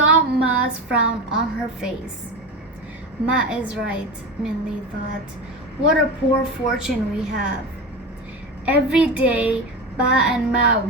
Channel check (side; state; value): both; normal; correlation 0.24